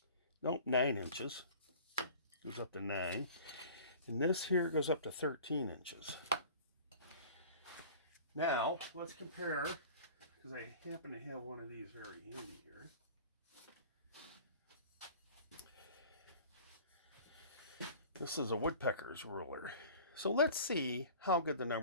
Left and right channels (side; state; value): both; inverted; correlation -0.43